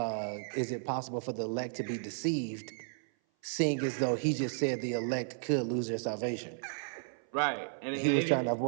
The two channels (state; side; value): silent; left; 55 dB below the other